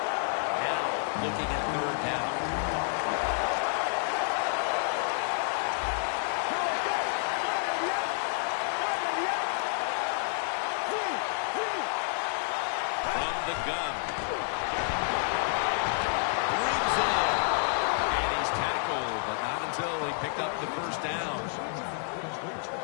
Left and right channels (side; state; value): right; silent; 58 dB below the other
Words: Now looking at 3rd down. The gun. Brings it in. And he's tackled, but not until he picked up the first down.